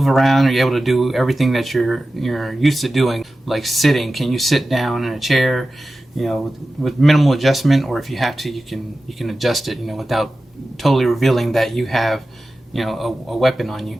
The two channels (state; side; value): normal; both; correlation 0.94